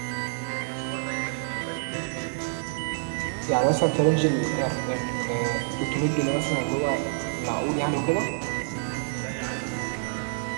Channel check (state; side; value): silent; left; digital silence